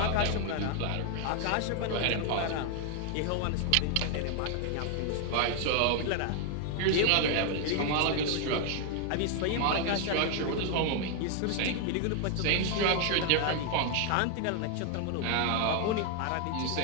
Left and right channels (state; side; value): different; both; correlation 0.00